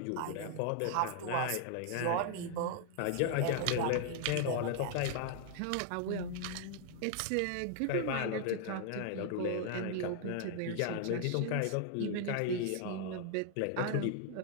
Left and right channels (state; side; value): different; both; correlation 0.00